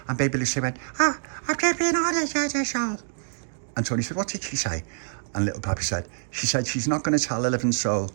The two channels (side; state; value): left; silent; digital silence